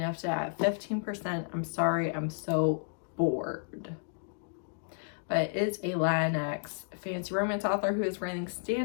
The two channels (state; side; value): silent; right; digital silence